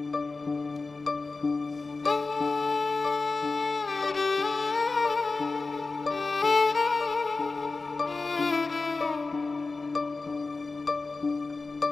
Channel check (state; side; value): quieter; right; 3.8 dB